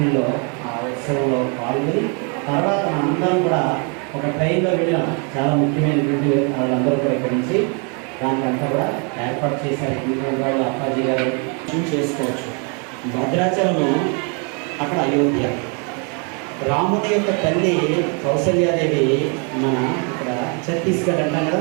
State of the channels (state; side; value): quieter; left; 36.6 dB